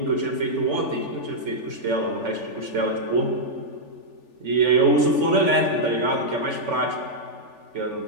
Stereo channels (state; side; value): late; left; 3.4 ms